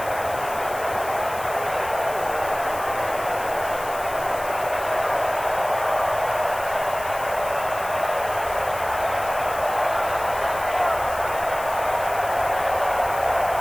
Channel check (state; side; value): noise; left; hiss, 14 dB below the sound